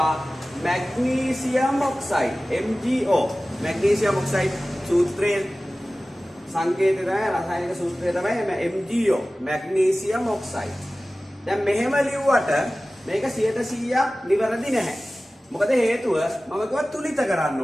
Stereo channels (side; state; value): both; normal; correlation 0.97